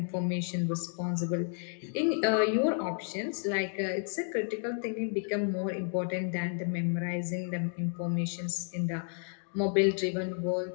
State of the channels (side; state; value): right; silent; 57 dB below the other